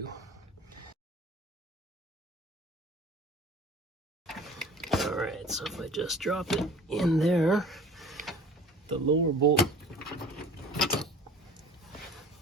Alright, so if I just drop it in there, the lower bolt,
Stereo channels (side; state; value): both; normal; correlation 0.45